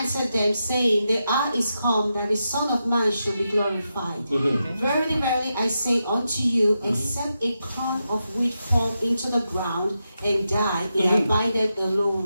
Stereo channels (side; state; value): both; inverted; correlation -0.87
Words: them, saying, the hour is come, that the Son of Man should be glorified. Verily, verily, I say unto you, except a corn of wheat fall into the ground and die, it abideth